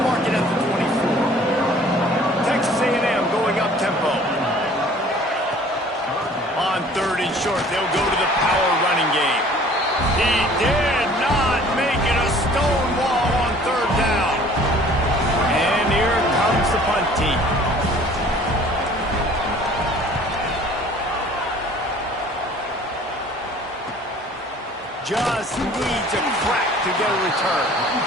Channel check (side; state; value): both; normal; correlation 0.51